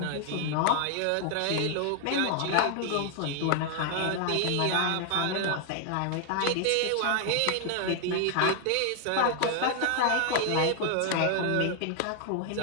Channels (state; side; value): different; both; correlation 0.00